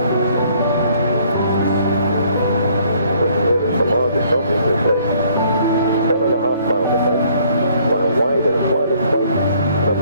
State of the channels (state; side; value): inverted; both; correlation -0.62